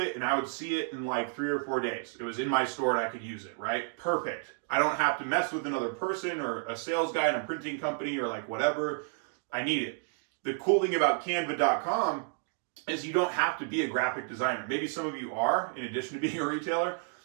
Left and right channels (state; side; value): silent; left; 57 dB below the other